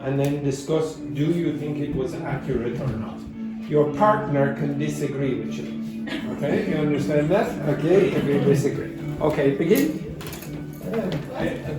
and then discuss, do you think it was accurate or not? Your partner can disagree with you. Okay, you understand that? Okay, if you disagree. Okay, begin.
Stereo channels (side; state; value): both; identical; correlation 1.00